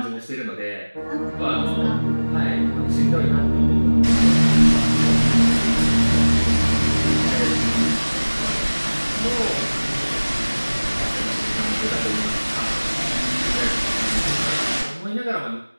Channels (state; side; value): inverted; both; correlation -1.00